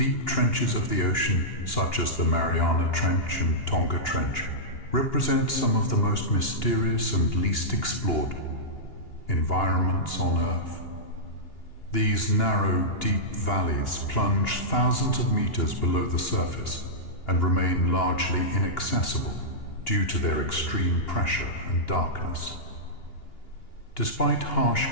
trenches of the ocean, such as the Mariana Trench and Tonga Trench, represent some of the most mysterious and least explored environments on Earth. These narrow, deep valleys plunge thousands of meters below the surface and remain largely inaccessible due to their extreme pressure and darkness. Despite harsh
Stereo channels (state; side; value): late; right; 2.8 ms